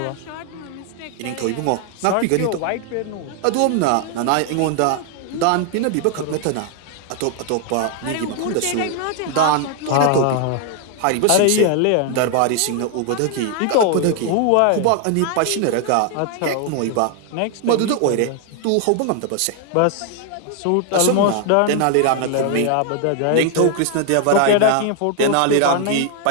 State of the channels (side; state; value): both; different; correlation 0.00